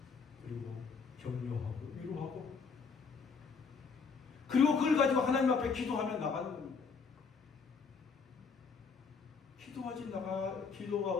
그리고 격려하고 위로하고 그리고 그걸 가지고 하나님 앞에 기도하며 나가는 겁니다. 기도가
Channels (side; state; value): right; quieter; 5.3 dB